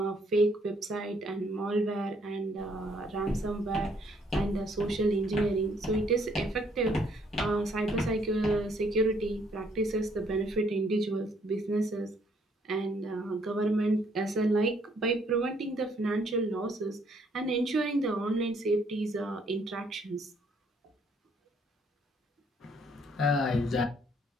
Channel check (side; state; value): both; normal; correlation 0.66